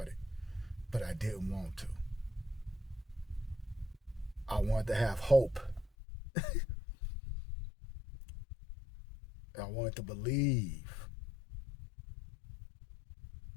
it, but I didn't want to. I wanted to have hope. I wanted to believe.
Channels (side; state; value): right; drops out; at 5.9 s